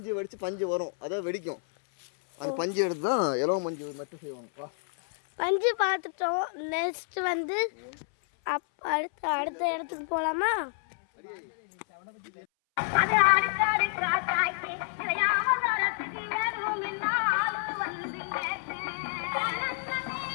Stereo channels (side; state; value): right; silent; 58 dB below the other